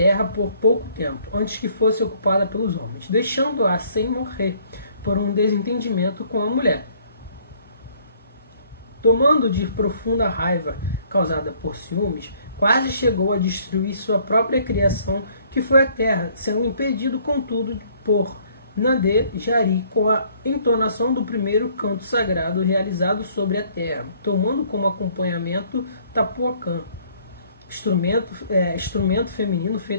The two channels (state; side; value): inverted; both; correlation -0.61